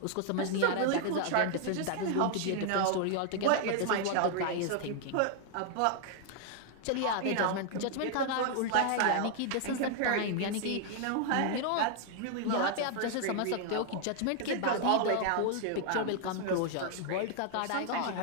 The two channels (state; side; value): different; both; correlation 0.00